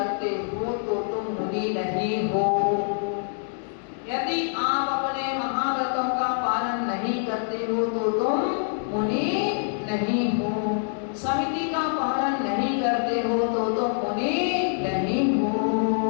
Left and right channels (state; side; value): silent; right; digital silence